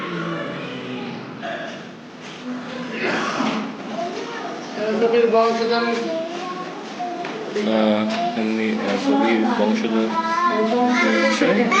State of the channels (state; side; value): identical; both; correlation 1.00